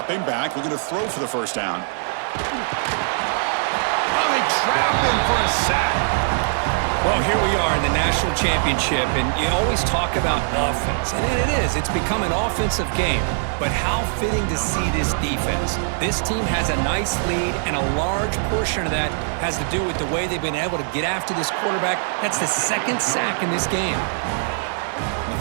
back, looking to throw for the first down. Oh, they trap him for a sack. Well, here we are in the national championship, and you always talk about offense, and it is. It's become an offensive game. But how fitting to see this defense. This team has a nice lead, and a large portion of that has to do with the way they've been able to get after this quarterback. That's the second sack in this game. The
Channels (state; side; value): silent; left; digital silence